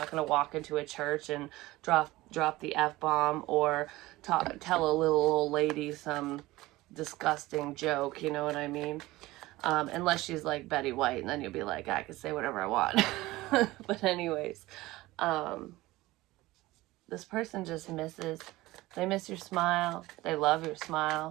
going to walk into a church and drop the F-bomb, or tell a little old lady some disgusting joke, you know what I mean? Unless she's like Betty White, and then you'll be like, I can say whatever I want. But anyways, this person just they miss your smile. They love your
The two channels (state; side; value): quieter; left; 18.7 dB